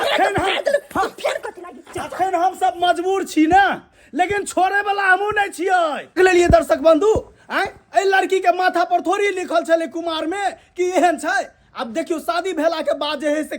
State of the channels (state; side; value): identical; both; correlation 1.00